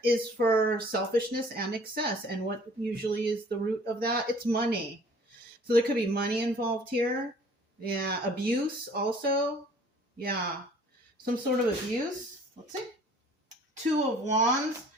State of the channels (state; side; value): normal; both; correlation 0.53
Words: is for selfishness and excess. And what usually is the root of that? It's money. So there could be money involved here. Yeah, abuse also. Yeah, some sort of abuse. Let's see. 2 of Wands,